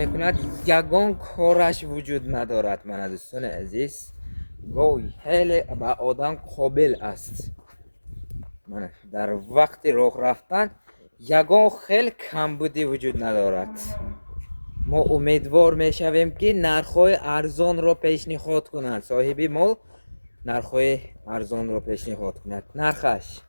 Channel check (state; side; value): inverted; both; correlation -1.00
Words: мекунад, ягон кораш вуҷуд надорад. мана дӯстони азиз, гоҳ хеле ба одам қобил аст. мана дар вақти роҳ рафтан ягон хел камбудӣ вуҷуд надорад. мо умедвор мешавем ки нархҳои арзонро пешниҳод кунад. соҳиби мол нархҳои арзонро пешниҳод кунад. нархаш